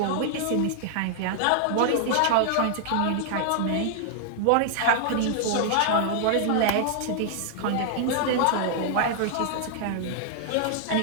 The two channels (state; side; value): different; both; correlation -0.01